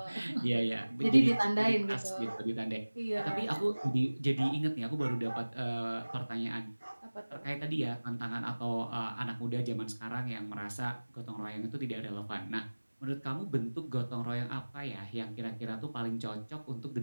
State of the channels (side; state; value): both; inverted; correlation -1.00